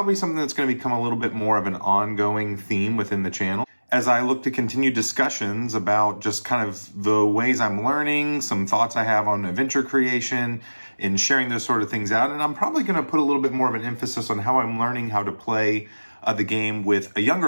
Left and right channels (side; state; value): both; inverted; correlation -1.00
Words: something that's going to become a little bit more of an ongoing theme within the channel as I look to continue discussions about just kind of the ways I'm learning, some thoughts I have on adventure creation, and sharing those sort of things out. And I'm probably going to put a little bit more of an emphasis on how I'm learning how to play the game with a